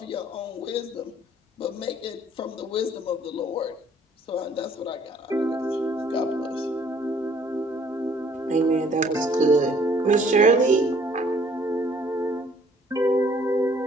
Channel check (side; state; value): both; normal; correlation 0.60